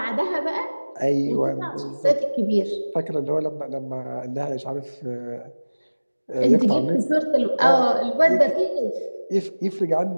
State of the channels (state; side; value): inverted; both; correlation -1.00